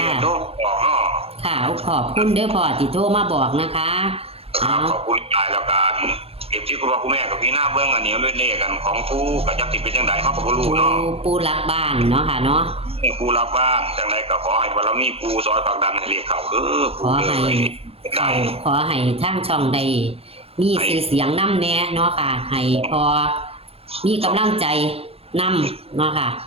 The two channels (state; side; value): late; left; 0.28 ms